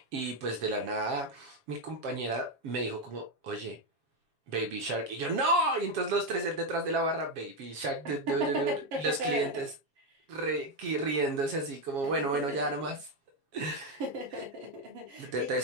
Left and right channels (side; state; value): left; late; 7.4 ms